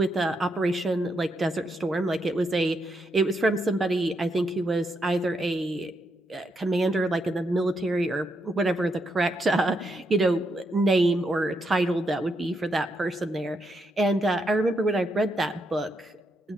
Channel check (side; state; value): both; normal; correlation 0.80